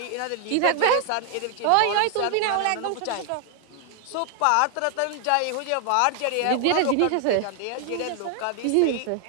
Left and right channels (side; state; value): both; different; correlation 0.00